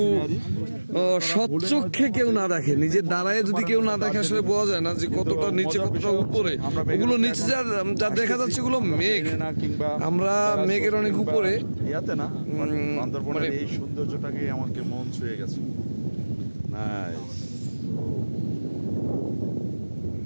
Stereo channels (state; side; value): inverted; both; correlation -1.00